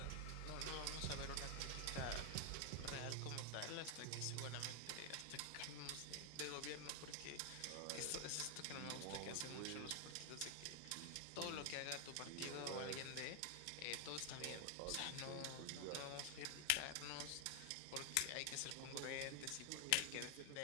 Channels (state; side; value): different; both; correlation 0.00